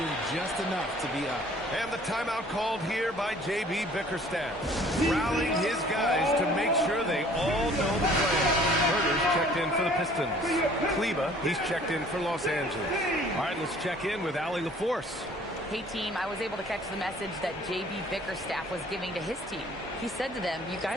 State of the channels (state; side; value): normal; both; correlation 0.54